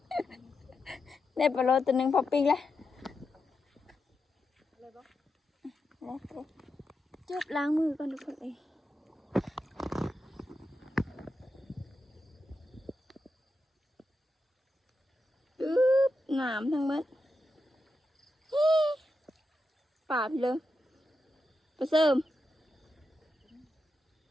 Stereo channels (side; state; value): both; normal; correlation 0.87